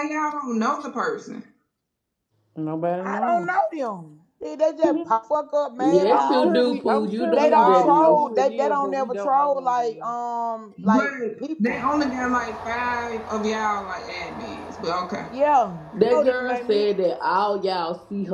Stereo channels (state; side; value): identical; both; correlation 1.00